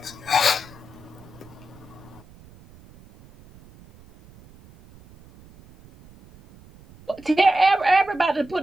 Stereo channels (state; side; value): noise; right; rumble, 23 dB below the sound